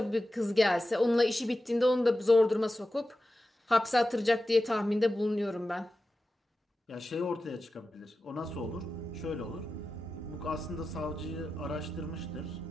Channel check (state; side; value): normal; both; correlation 0.93